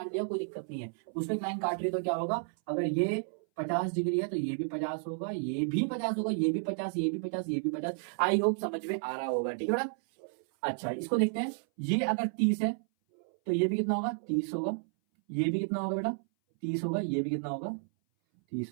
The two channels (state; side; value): silent; left; 56 dB below the other